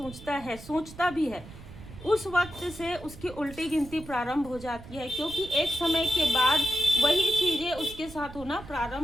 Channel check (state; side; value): noise; right; rumble, 16 dB below the sound